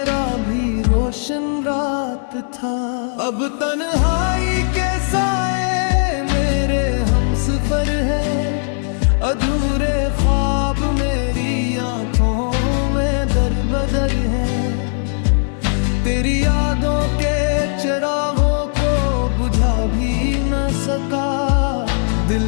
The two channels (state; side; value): silent; right; 67 dB below the other